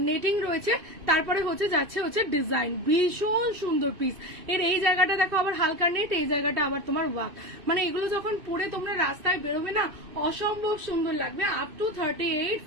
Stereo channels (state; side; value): late; left; 2.5 ms